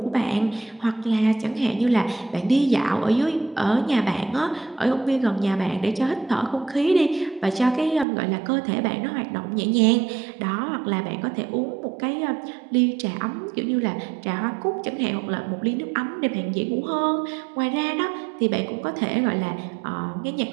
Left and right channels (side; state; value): left; drops out; at 8.1 s